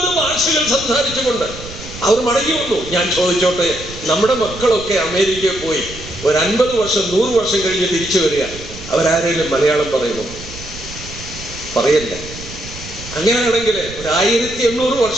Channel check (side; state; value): right; noise; rumble, 13 dB below the sound